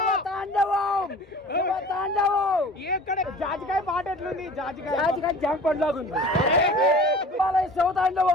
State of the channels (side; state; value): both; normal; correlation 0.43